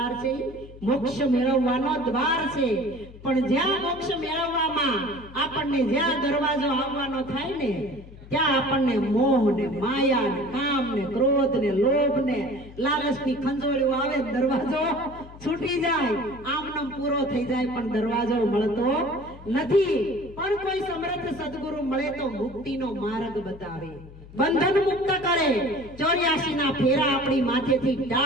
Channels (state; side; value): noise; left; hum, 18 dB below the sound